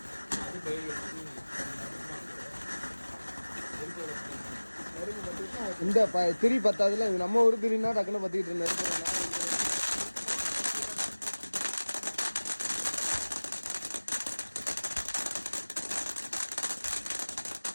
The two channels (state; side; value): inverted; both; correlation -1.00